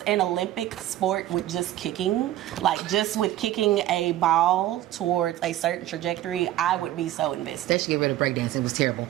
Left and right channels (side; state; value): left; quieter; 13.9 dB